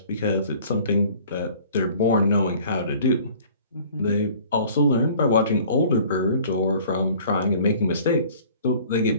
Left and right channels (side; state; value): both; inverted; correlation -0.50